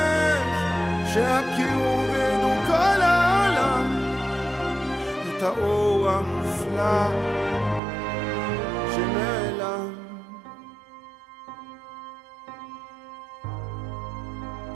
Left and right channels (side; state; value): left; drops out; at 7.8 s